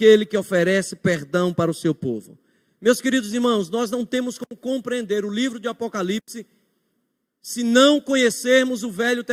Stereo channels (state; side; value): identical; both; correlation 1.00